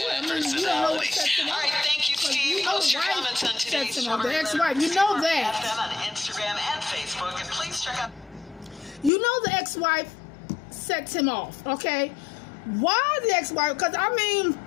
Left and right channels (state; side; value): drops out; right; at 9.1 s